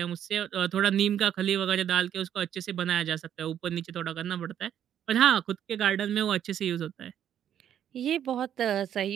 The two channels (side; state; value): left; quieter; 9.9 dB